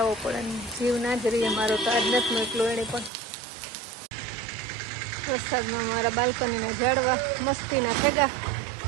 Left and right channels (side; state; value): left; drops out; at 3.1 s